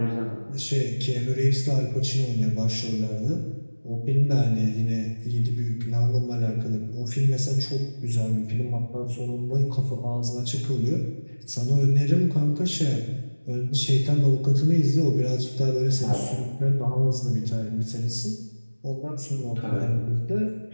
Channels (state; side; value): inverted; both; correlation -1.00